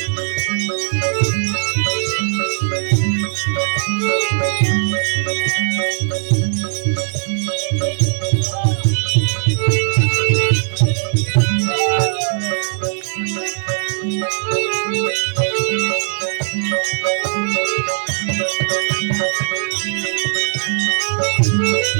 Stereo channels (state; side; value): silent; left; 57 dB below the other